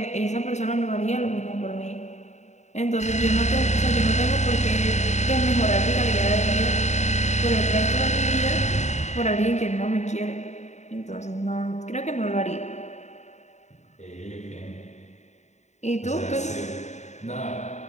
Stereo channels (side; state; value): right; late; 0.34 ms